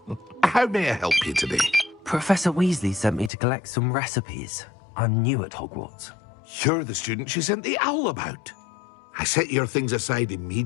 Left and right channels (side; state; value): right; drops out; at 3.3 s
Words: How may I help you today? Professor Weasley sent me to collect some recipes. I'm new at Hogwarts. You're the student she sent the owl about. I set your things aside